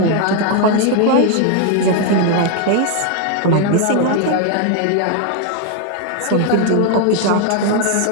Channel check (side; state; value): both; different; correlation 0.01